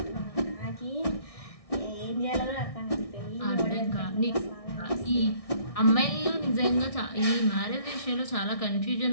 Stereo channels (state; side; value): late; right; 1.6 ms